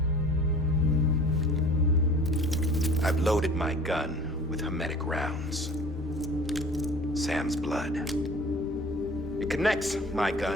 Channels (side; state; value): both; normal; correlation 0.45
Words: I've loaded my gun with hermetic rounds. Sam's blood. It connects my